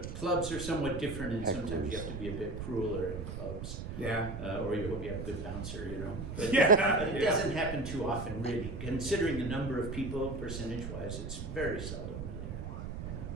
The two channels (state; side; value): noise; right; rumble, 7 dB below the sound